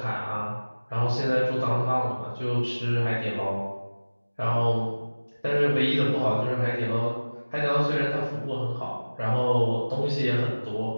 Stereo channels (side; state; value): both; inverted; correlation -1.00